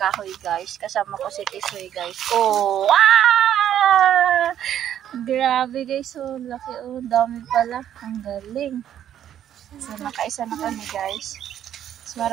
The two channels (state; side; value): quieter; left; 10.6 dB